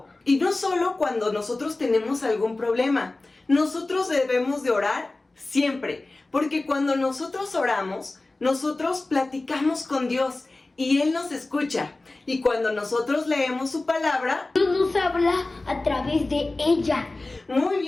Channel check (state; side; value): quieter; right; 3.1 dB